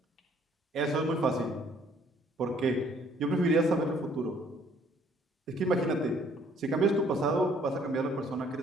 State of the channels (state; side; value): normal; both; correlation 0.61